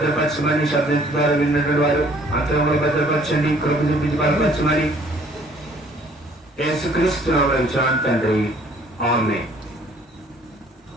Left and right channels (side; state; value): both; normal; correlation 0.58